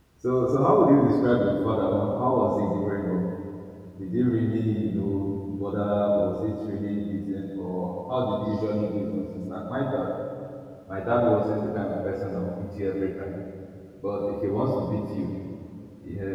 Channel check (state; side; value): identical; both; correlation 1.00